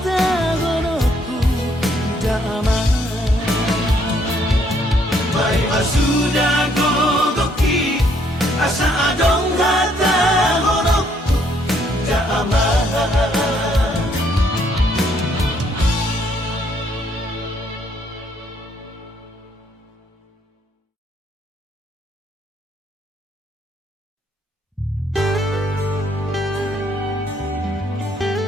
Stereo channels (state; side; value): normal; both; correlation 0.68